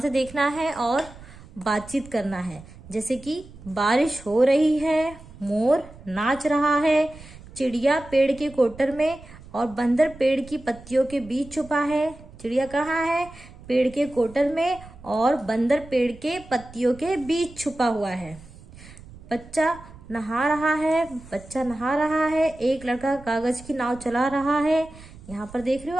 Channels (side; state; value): right; noise; rumble, 19 dB below the sound